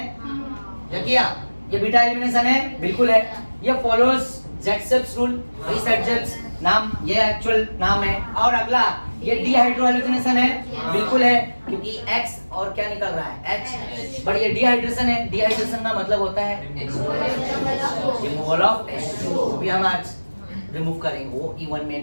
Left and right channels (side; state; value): both; inverted; correlation -1.00